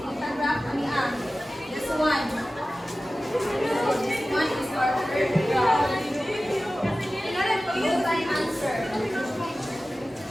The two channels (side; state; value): both; normal; correlation 0.96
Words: Ang graph kami this one. So this one is our third graph. Tingnan po yung answer.